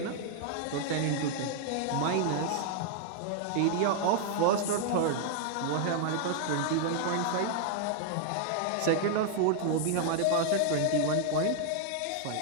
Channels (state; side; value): different; both; correlation 0.00